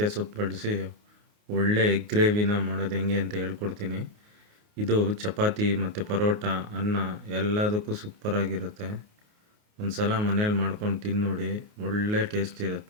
ಸೊಪ್ಪು ಬಳಸಿ ಒಳ್ಳೆ ಎಗ್ ಗ್ರೇವಿನ ಮಾಡೋದು ಹೆಂಗೆ ಅಂತ ಹೇಳ್ಕೊಡ್ತೀನಿ. ಇದು ಚಪಾತಿ ಮತ್ತು ಪರೋಟ, ಅನ್ನ ಎಲ್ಲದಕ್ಕೂ ಸೂಪರಾಗಿರುತ್ತೆ. ಒಂದು ಸಲ ಮನೇಲಿ ಮಾಡ್ಕೊಂಡು ತಿಂದು ನೋಡಿ, ಒಳ್ಳೆ ಟೇಸ್ಟ್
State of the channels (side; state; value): left; late; 28 ms